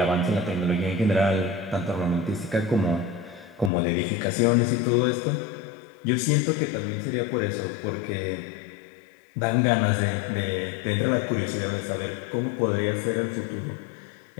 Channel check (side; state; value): right; drops out; at 3.7 s